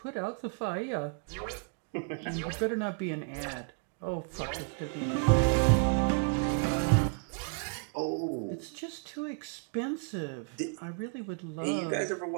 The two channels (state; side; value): quieter; left; 37.3 dB